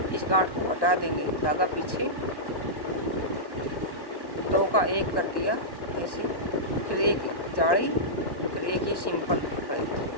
इस गांठ को हटा देंगे, धागा पीछे, 2 का 1 कर दिया ऐसे, फिर एक जाली, फिर एक ये सिंपल फली,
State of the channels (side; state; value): right; late; 1.1 ms